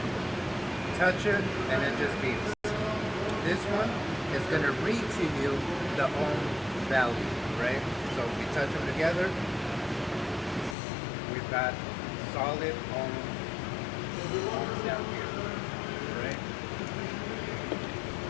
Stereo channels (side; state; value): right; drops out; at 10.8 s